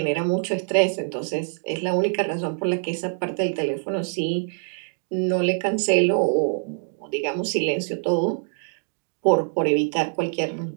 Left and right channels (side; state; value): left; silent; 58 dB below the other